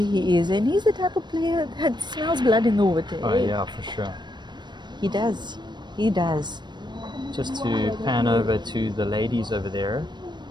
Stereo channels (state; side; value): late; left; 0.22 ms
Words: he is. And he's the type of player that smells blood in the water. Oh yeah, for sure. He does. He does. Just to pan over to the ladies over there,